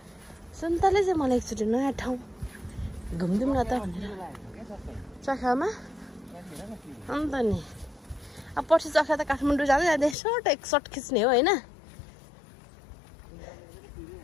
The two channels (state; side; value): drops out; right; at 10.2 s